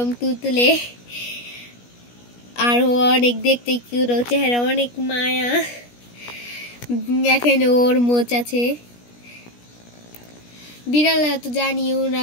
তুলতুলে, আর ও অনেক দেখতে কিউট, ওর চেহারা অনেক মায়া। দেখেন ওর মোচ আছে। বিড়ালরা তো জানি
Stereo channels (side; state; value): right; late; 17 ms